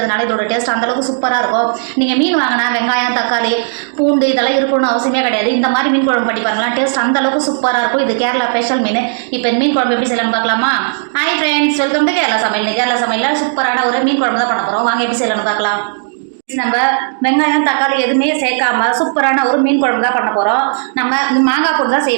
இதோட டேஸ்ட் அந்த அளவுக்கு சூப்பராக இருக்கும். நீங்கள் மீன் வாங்கினா வெங்காயம், தக்காளி, பூண்டு இதெல்லாம் இருக்கணும்னு அவசியமே கிடையாது. இந்த மாதிரி மீன் குழம்பு பண்ணி பாருங்களா, டேஸ்ட் அந்த அளவுக்கு சூப்பராக இருக்கும். இது கேரளா ஸ்பெஷல் மீன். இப்போ இந்த மீன் குழம்பு எப்படி செய்யலாம்னு பார்க்கலாமா? Hi friends, welcome to Kerala சமையல். கேரளா சமையலில் சூப்பரான ஒரு மீன் குழம்பு தான் பண்ண போகிறோம். வாங்க எப்படி செய்யலாம்னு பார்க்கலாம். நம்ம வெங்காயம், தக்காளி எதுவுமே சேர்க்காம சூப்பரான ஒரு மீன் குழம்பு தான் பண்ண போகிறோம். நம்ம மாங்காய் போட்டு தான்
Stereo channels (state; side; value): silent; left; digital silence